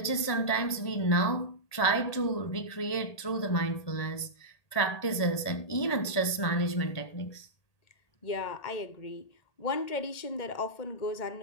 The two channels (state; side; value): late; right; 1.8 ms